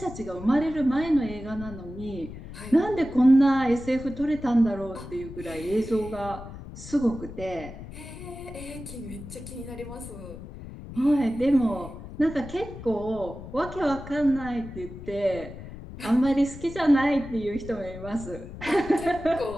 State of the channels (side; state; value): left; noise; rumble, 13 dB below the sound